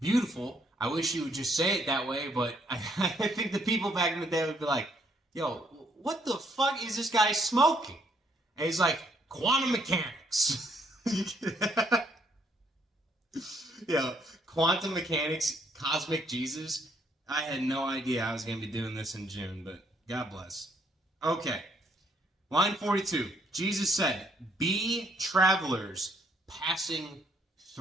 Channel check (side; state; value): both; normal; correlation 0.69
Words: I wish you would just say it that way, but I think the people back in the day would be like, "Yo, what the fuck is this guy smoking?" And he's like, "Quantum mechanics." Quantum mechanics, cosmic Jesus. I had no idea I was going to be doing this in June, but God bless. Okay. Line 42. Jesus said, "Be travelers passing